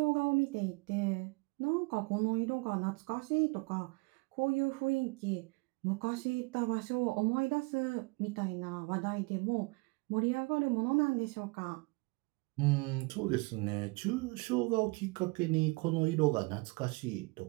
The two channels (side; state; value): left; quieter; 28.0 dB